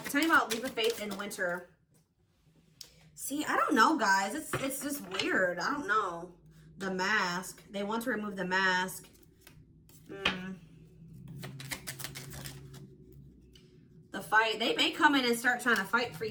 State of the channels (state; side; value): identical; both; correlation 1.00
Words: Tell me about leap of faith in winter. See, I don't know, guys. It's just weird. I don't know. The mask. They want to remove the mask. The fight. They may come in and start trying to fight for